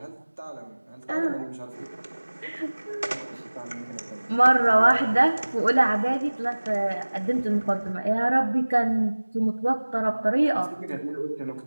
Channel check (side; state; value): both; inverted; correlation -1.00